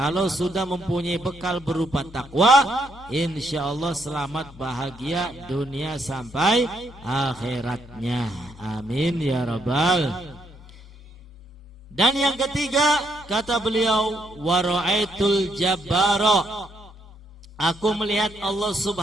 sudah mempunyai bekal berupa takwa, insya Allah selamat bahagia dunia sampai akhiratnya. Amin ya rabbal. Dan yang ketiga, kata beliau, wara'aitul jabbara, aku melihat Allah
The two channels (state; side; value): normal; both; correlation 0.74